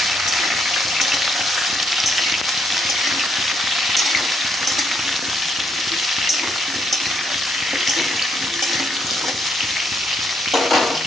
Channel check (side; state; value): both; normal; correlation 0.74